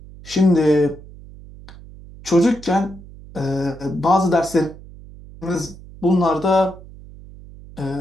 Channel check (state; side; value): noise; right; hum, 18 dB below the sound